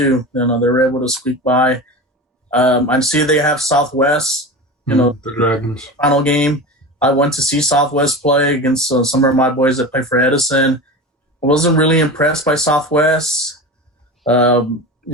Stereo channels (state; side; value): normal; both; correlation 0.28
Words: They were able to squeak by. I see they have Southwest. The Dragons final game. I went to see Southwest play against some of my boys that play for Edison. I wasn't really impressed by Southwest.